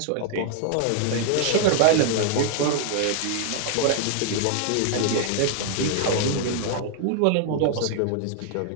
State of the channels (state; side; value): different; both; correlation 0.00